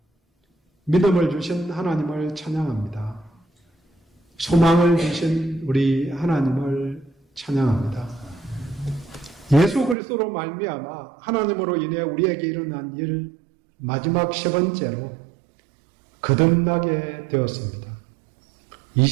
믿음을 주신 하나님을 찬양합니다. 소망을 주신 우리 하나님을 찬양합니다. 예수 그리스도로 말미암아 하나님으로 인해 우리에게 일어난 일 마지막 세 번째로 거듭나게 되었습니다.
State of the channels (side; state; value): left; drops out; at 10.0 s